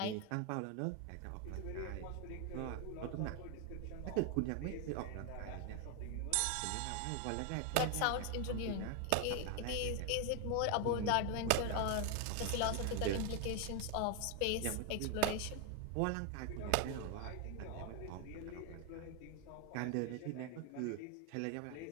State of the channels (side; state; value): both; different; correlation 0.01